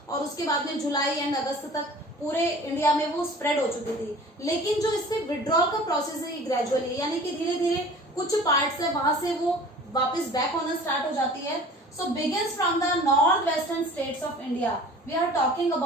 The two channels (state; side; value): normal; both; correlation 0.44